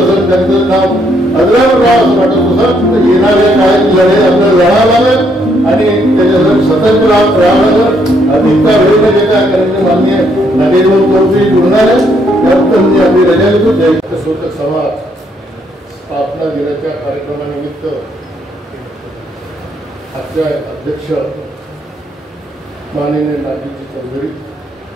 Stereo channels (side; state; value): both; normal; correlation 0.71